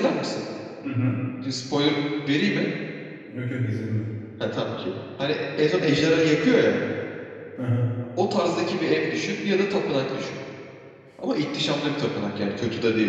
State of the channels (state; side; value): identical; both; correlation 1.00